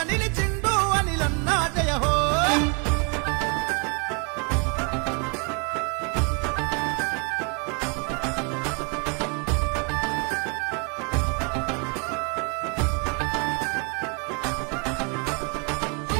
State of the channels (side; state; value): left; quieter; 35.6 dB